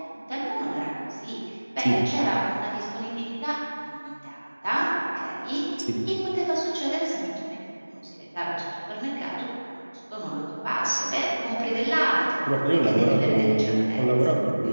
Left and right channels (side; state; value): both; inverted; correlation -1.00